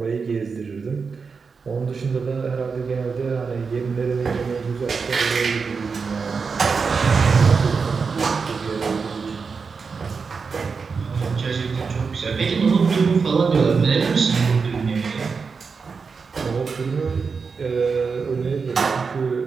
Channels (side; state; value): left; quieter; 5.2 dB